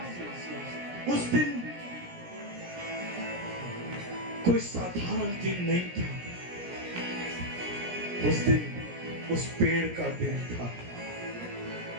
उस दिन कोई साधारण दिन नहीं था। उस दिन उस पेड़ का दिन था,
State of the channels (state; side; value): late; left; 17 ms